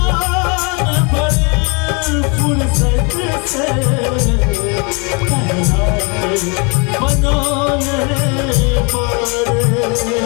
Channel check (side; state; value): right; quieter; 32.4 dB